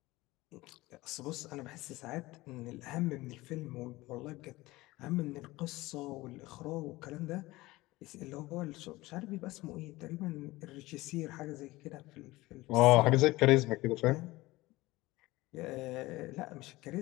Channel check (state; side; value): quieter; right; 19.7 dB